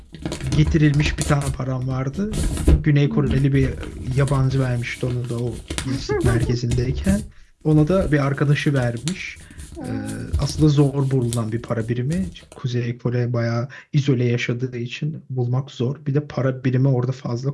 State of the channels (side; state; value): both; identical; correlation 1.00